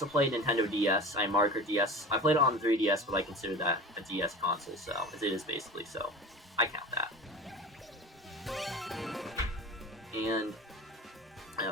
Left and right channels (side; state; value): both; normal; correlation 0.35